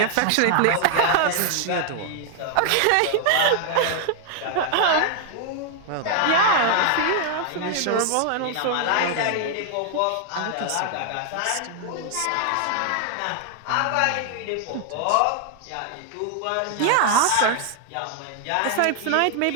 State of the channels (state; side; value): different; both; correlation 0.00